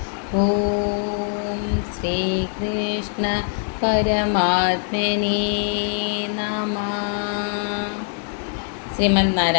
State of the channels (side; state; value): right; silent; 59 dB below the other